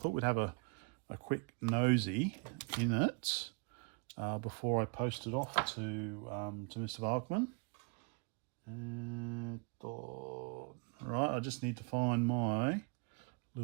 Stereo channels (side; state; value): left; quieter; 32.5 dB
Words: we'd have a quick nosy in it before I post it off to Mr. Balkman. Right, I just need to find my